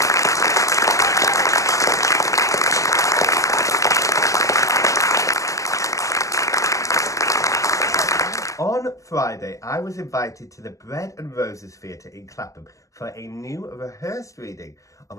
On Friday, I was invited to the Bread and Roses Theatre in Clapham for a new rehearsed reading of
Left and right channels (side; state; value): right; late; 0.16 ms